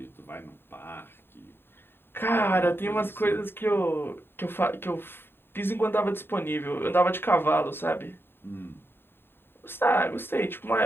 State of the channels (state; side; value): late; right; 0.11 ms